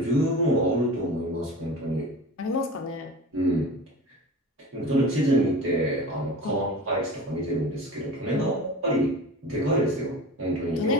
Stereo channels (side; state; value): both; normal; correlation 0.35